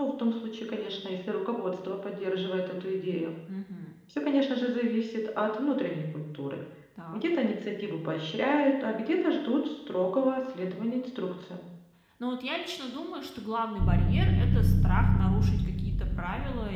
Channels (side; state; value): both; identical; correlation 1.00